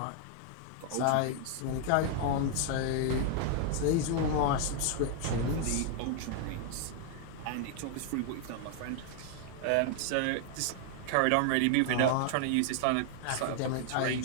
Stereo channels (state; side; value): different; both; correlation 0.00